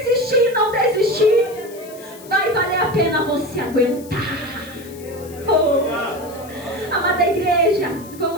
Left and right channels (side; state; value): left; noise; hiss, 20 dB below the sound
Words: e não desistir. Vai valer a pena você aguentar. Amada igreja,